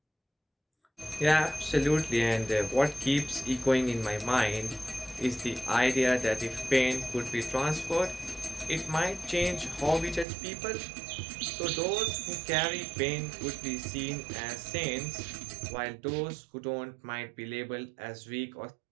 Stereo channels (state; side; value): drops out; left; at 10.2 s